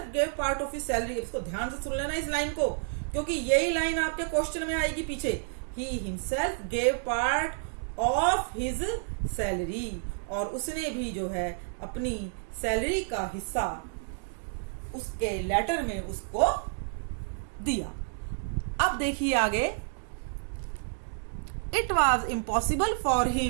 gave part of his salary, इसको ध्यान से सुन लेना इस लाइन को, क्योंकि यही लाइन आपके क्वेश्चन में आएगी पीछे। He himself gave part of his salary, और उसने भी जो है अपनी सैलरी का हिस्सा उसके लेटर में उसको दिया। अब देखिए आगे, it was impossible for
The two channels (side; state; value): left; silent; digital silence